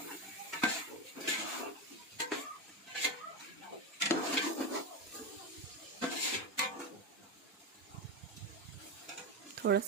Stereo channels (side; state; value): both; normal; correlation 0.15